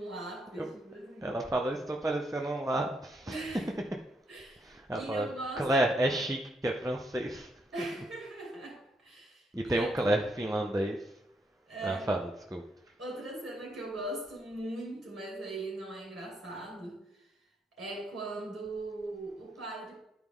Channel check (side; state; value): both; normal; correlation 0.77